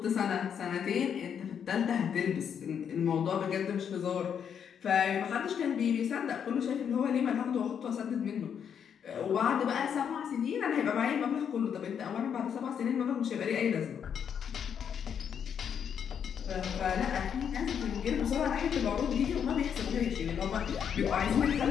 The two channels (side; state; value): right; quieter; 7.9 dB